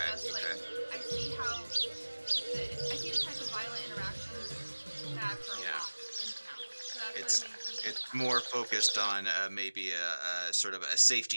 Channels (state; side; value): inverted; both; correlation -1.00